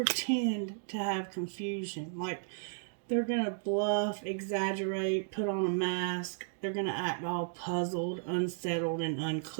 to have confusion. Like, they're going to bluff, exaggerate, put on a mask. They're going to act all puzzled, unsettled, and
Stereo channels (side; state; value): left; silent; digital silence